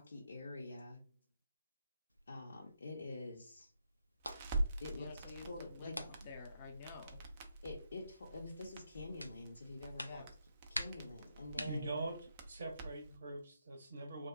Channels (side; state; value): both; inverted; correlation -0.81